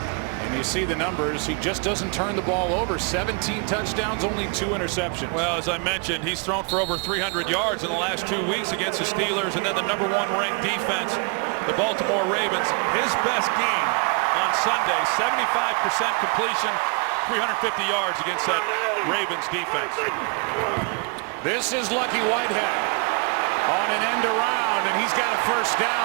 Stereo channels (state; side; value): quieter; left; 35.1 dB